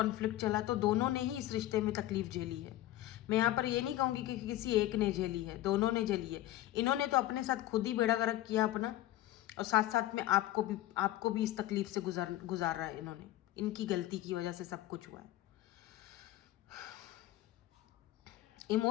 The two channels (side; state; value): right; quieter; 15.0 dB